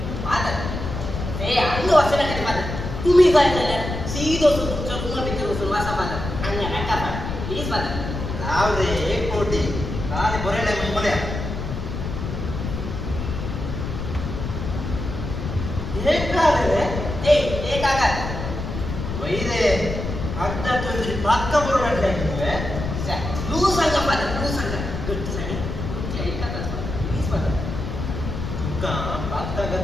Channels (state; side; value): noise; left; rumble, 5 dB below the sound